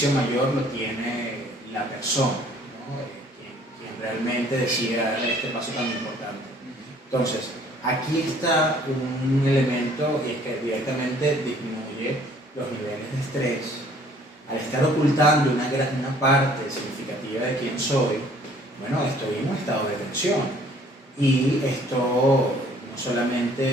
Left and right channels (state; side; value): normal; both; correlation 0.57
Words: mayor lo tiene la persona, ¿no? Quien realmente decide dar este paso tan importante. Entonces, aquí está un elemento y es que directamente disminuye los niveles de estrés. Al estar ocultando una parte significativa de quién soy, bueno, estoy en un estado de tensión. Y esto no